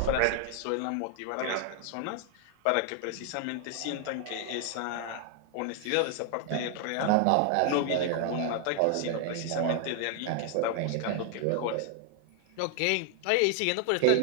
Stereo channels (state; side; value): different; both; correlation 0.00